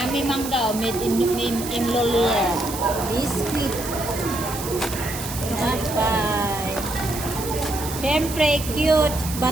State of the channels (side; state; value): right; noise; hiss, 9 dB below the sound